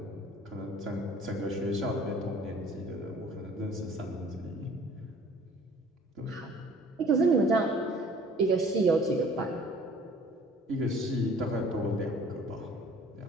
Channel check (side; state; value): both; normal; correlation 0.52